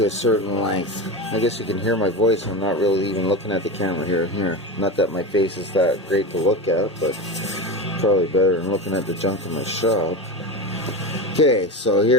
a certain length. I guess you can hear my voice. I'm not really even looking at the camera here. Not that my face is that great to look at, but probably better than looking at the junk in my shop. Okay, so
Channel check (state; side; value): normal; both; correlation 0.23